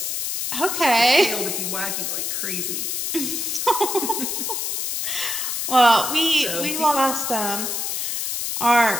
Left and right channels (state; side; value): noise; left; hiss, 2 dB below the sound